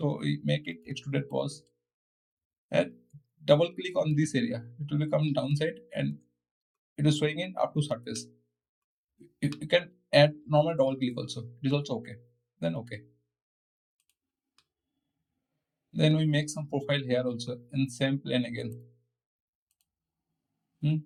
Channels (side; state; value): both; identical; correlation 1.00